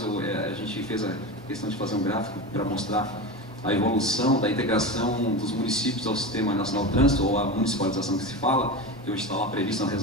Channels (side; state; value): both; normal; correlation 0.24